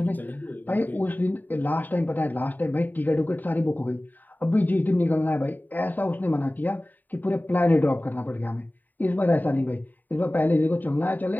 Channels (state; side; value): late; right; 0.087 ms